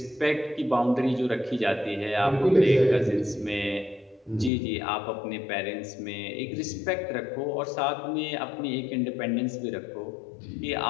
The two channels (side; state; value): right; drops out; at 4.5 s